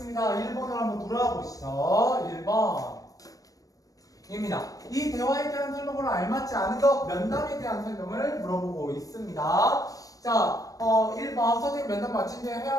1번을 한번 돌아보시죠. 1번 입니다. 이 대화에 대한 설명으로 알맞지 않은 것, 면담에 대한 설명을 물어보고 있습니다. 자, 1번 선생님 면담 마친 뒤에 해야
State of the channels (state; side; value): late; right; 0.17 ms